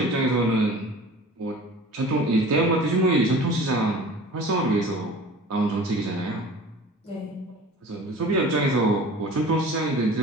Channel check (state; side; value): normal; both; correlation 0.41